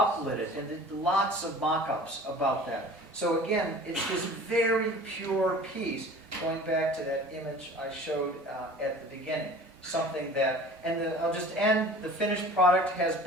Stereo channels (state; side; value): normal; both; correlation 0.43